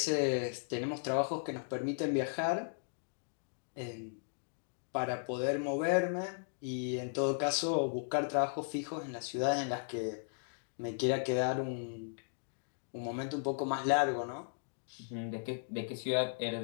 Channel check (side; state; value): right; silent; digital silence